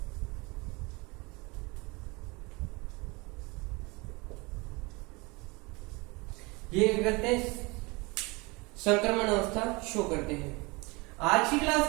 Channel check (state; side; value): quieter; left; 26.2 dB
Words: ये क्या करते हैं, संक्रमण अवस्था शो करते हैं। आज की क्लास